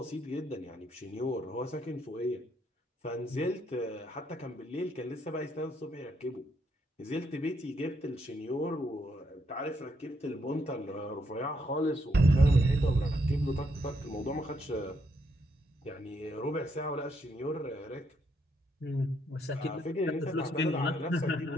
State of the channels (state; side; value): normal; both; correlation 0.75